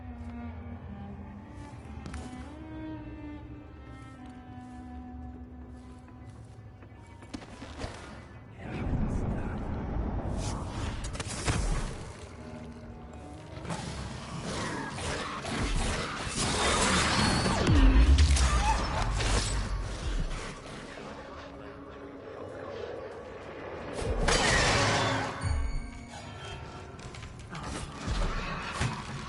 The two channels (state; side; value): identical; both; correlation 1.00